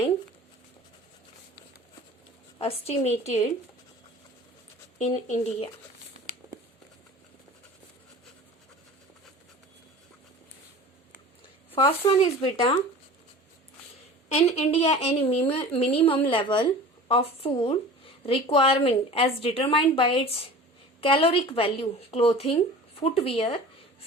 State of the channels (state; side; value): normal; both; correlation 0.39